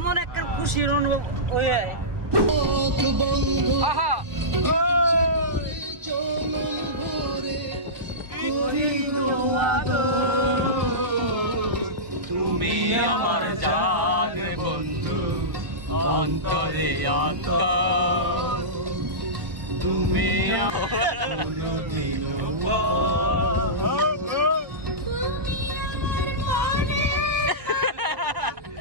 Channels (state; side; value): late; left; 1.4 ms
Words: একটা খুশির অনুভব ওই আহা তুমি আমার জান বন্ধু, অন্তরে অন্তর তুমি